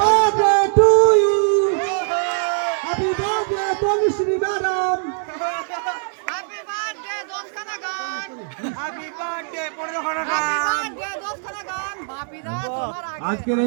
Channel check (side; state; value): left; silent; 57 dB below the other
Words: birthday to you, happy birthday Tanushree madam. Happy birthday দশখানা গান, হ্যাপি বার্থডে 15 খানা হ্যাপি গান। বার্থডে দশখানা গান। বাপিদা তোমার আগে। আজকের